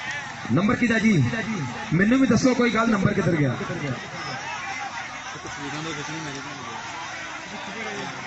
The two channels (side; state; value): both; identical; correlation 1.00